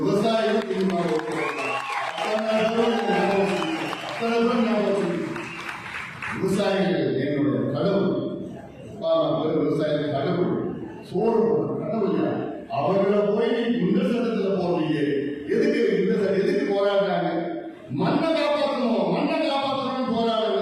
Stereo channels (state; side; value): identical; both; correlation 1.00